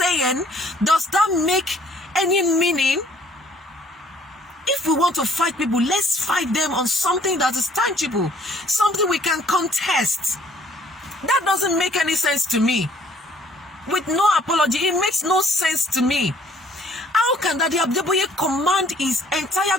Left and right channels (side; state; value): both; normal; correlation 0.59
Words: Does that make any meaning? If we want to fight people, let's fight them on something that is tangible, something we can contest. That doesn't make any sense to me. With no apology, it makes no sense to me. How can Daddy Adeboye command his entire